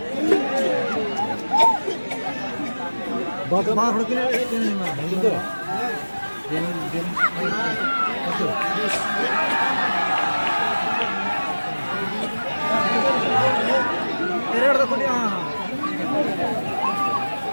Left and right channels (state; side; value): inverted; both; correlation -1.00